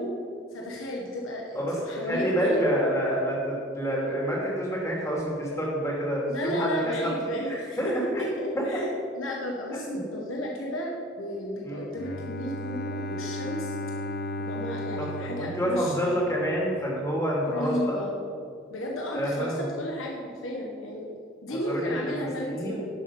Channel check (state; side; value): normal; both; correlation 0.46